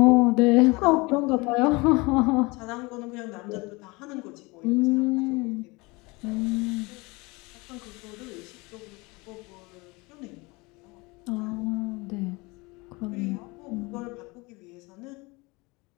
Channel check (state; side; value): quieter; right; 25.1 dB